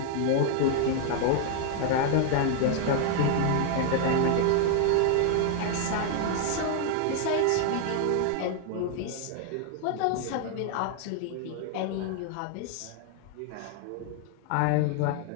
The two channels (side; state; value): both; different; correlation 0.00